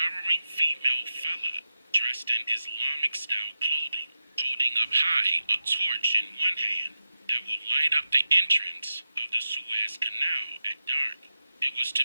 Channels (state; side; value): inverted; both; correlation -0.88